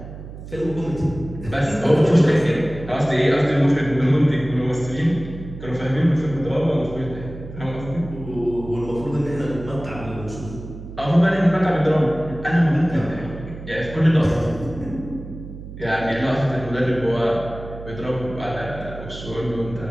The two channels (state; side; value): noise; right; hum, 12 dB below the sound